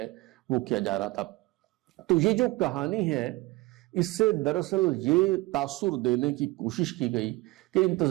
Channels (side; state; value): left; quieter; 21.4 dB